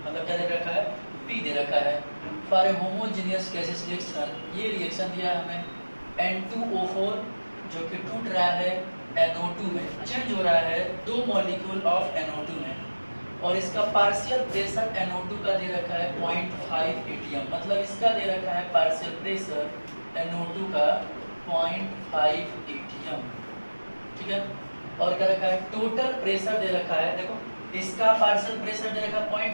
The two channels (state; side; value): inverted; both; correlation -1.00